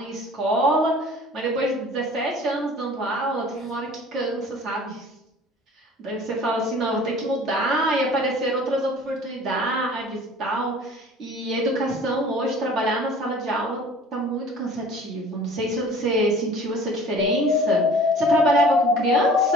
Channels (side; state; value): both; normal; correlation 0.47